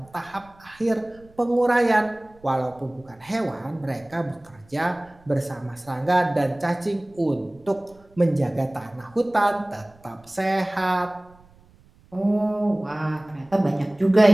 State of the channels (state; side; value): noise; right; rumble, 28 dB below the sound